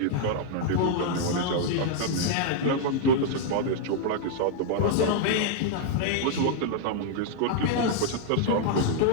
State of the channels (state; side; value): different; both; correlation 0.00